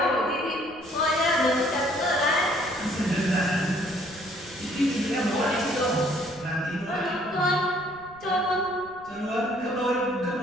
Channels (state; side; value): noise; right; rumble, 24 dB below the sound